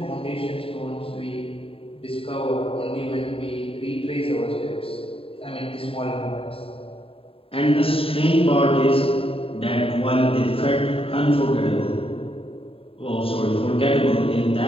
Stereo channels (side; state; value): right; late; 0.27 ms